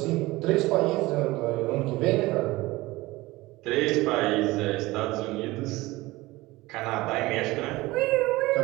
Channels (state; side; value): quieter; left; 19.9 dB